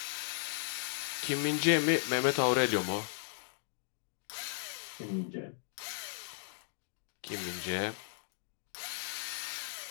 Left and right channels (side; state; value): right; silent; digital silence